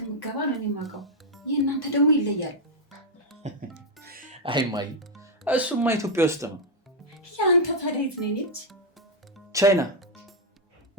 የምትገባ ነው የማውቀው። የእናንተ ደግሞ ይለያል። አይ እማዬ እሱማ ኢትዮጵያ ውስጥ ነው። ያንተ ታዲያ የት ነች? ቻይና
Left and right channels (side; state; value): both; normal; correlation 0.00